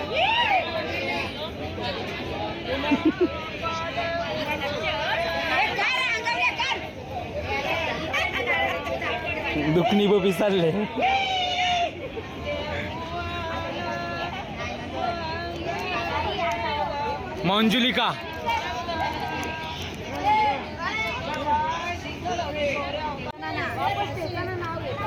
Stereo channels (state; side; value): identical; both; correlation 1.00